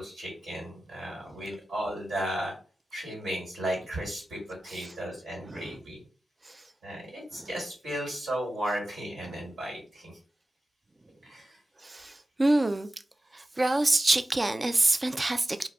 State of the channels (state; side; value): normal; both; correlation 0.95